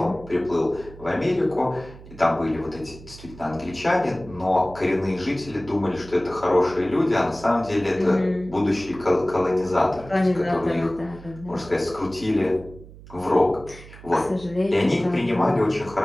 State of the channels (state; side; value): noise; right; hum, 18 dB below the sound